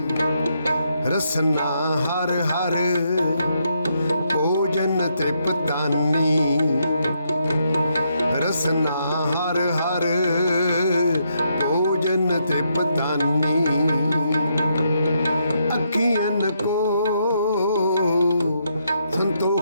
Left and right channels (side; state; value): both; inverted; correlation -0.77